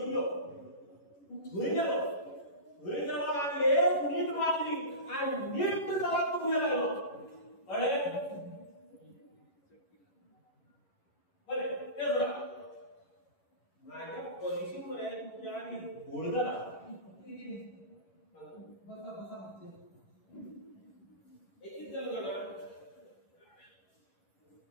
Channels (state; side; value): late; right; 11 ms